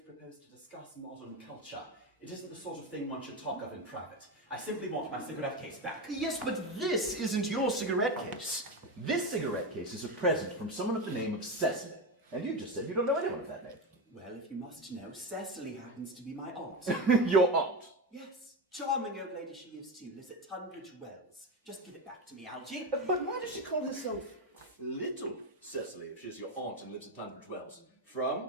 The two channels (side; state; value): both; normal; correlation 0.16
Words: propose to discuss modern culture. It isn't the sort of thing one should talk of in private. I simply want my cigarette case back. Yes, but this isn't your cigarette case. This cigarette case is a present from someone of the name of Cecily. And you just said you don't know anyone of that name. Well, if you must know, Cecily happens to be my aunt. Your aunt? Yes, charming old lady she is too, lives at Tunbridge Wells. Just give it back to me, Algy. But why does she call herself Little Cecily if she's your aunt and lives at Tunbridge Wells?